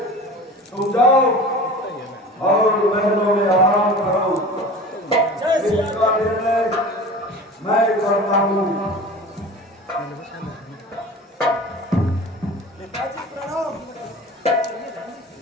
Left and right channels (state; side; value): normal; both; correlation 0.37